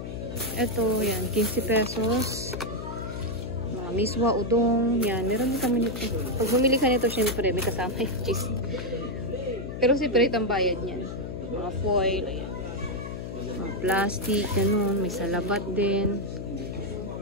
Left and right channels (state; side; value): noise; left; hum, 7 dB below the sound